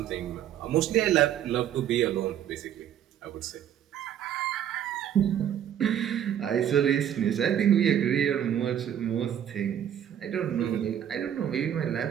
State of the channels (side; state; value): left; quieter; 10.0 dB